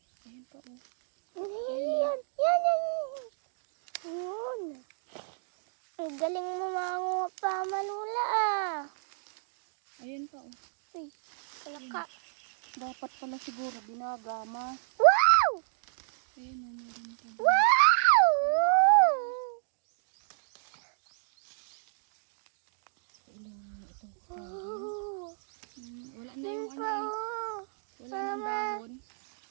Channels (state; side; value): silent; left; digital silence